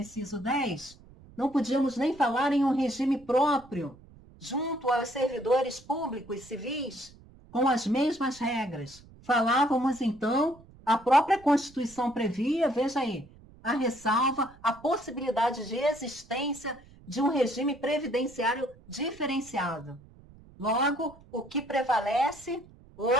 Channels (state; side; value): noise; right; rumble, 23 dB below the sound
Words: 10, não podíamos nem falar em um regime próprio, junto aos servidores públicos civis, com as mesmas regras. Falávamos, então, a própria Constituição previa, veja aí, a ressalva, a possibilidade de existência de um regime previdenciário diferenciado. Logo, o que prevalece